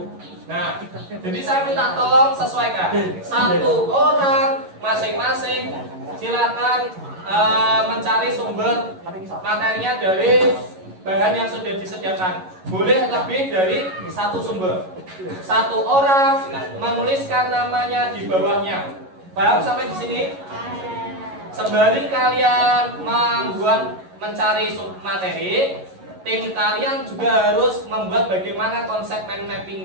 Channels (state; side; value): late; left; 11 ms